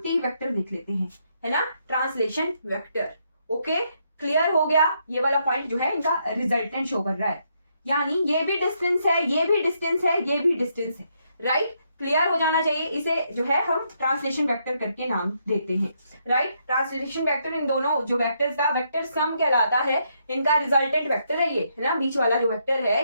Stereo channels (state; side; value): inverted; both; correlation -0.76